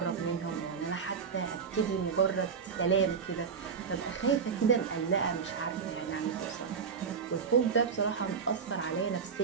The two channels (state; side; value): quieter; left; 6.1 dB